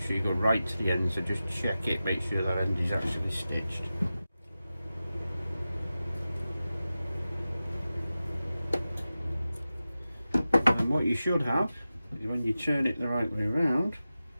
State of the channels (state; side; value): inverted; both; correlation -0.94